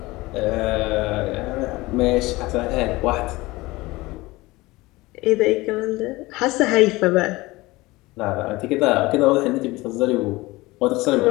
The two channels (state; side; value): quieter; right; 20.7 dB